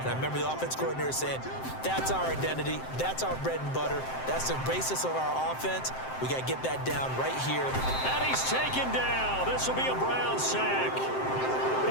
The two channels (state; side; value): late; right; 7.7 ms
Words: I remember the offense coordinator saying, that's our identity, that's our bread and butter, that's the basis of our offense. We got to get that down right here. And he's taken down. This will be a Brown sack.